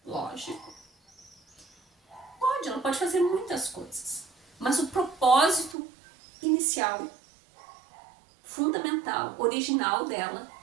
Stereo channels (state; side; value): drops out; left; at 5.8 s